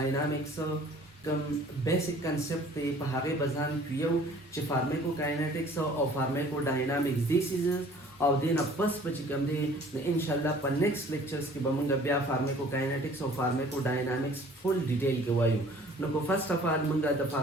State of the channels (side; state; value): both; normal; correlation 0.52